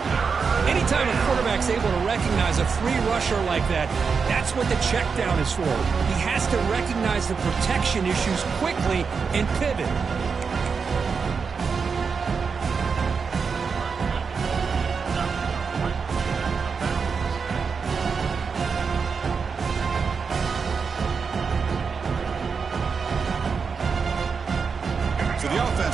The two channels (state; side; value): quieter; left; 5.5 dB